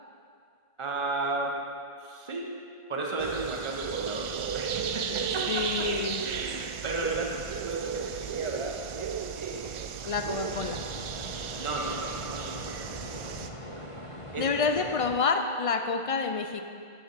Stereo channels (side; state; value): right; late; 1.4 ms